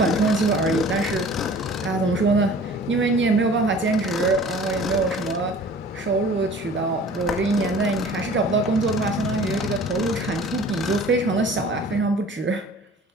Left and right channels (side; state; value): both; normal; correlation 0.46